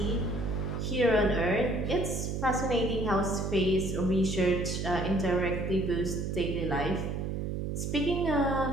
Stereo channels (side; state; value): right; noise; hum, 2 dB below the sound